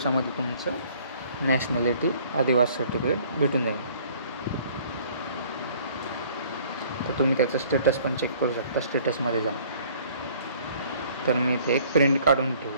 तुमचं नॅशनॅलिटी आदिवासी सर्टिफिकेट भेटून जाईल. तर तुम्ही त्याचं स्टेटस पण चेक करू शकता स्टेटसमध्ये जाऊन. तर मी इथे एक प्रिंट काढून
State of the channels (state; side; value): inverted; both; correlation -0.55